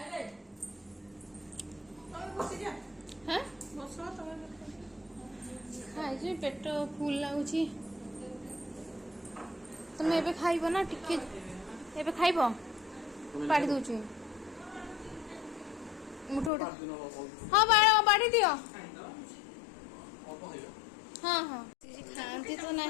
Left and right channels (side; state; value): right; drops out; at 16.5 s